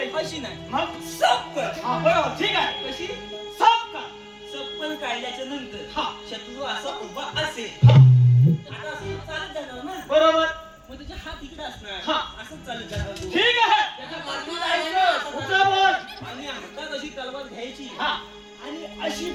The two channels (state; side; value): identical; both; correlation 1.00